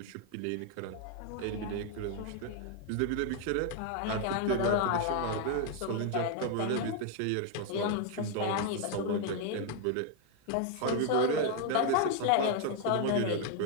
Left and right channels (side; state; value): both; different; correlation 0.00